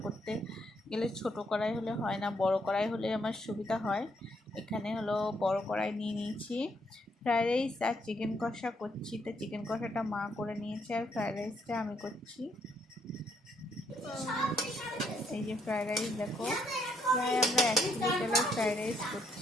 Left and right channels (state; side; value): normal; both; correlation 0.73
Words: করতে গেলে ছোট কড়াই হলে হয় না, বড় কড়াই হলে আমার সুবিধা হয়। এখানে হলো বড় কড়াই নিয়ে নিয়েছি। ফ্রাইড রাইস আর চিকেন কষা করছি, তো চিকেন কষাটা মা করে নিয়েছে আর ফ্রাইড রাইসটা আমি করছি। এই যে ফ্রাইড রাইস দেখো, প্রায় আমরা 1 কিলো চালের ফ্রাইড রাইস